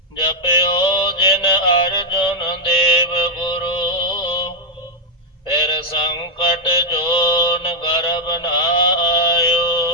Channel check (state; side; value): normal; both; correlation 0.00